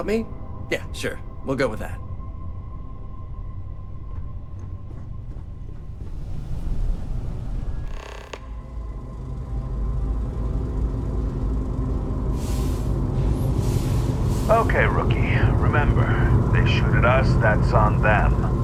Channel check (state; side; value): identical; both; correlation 1.00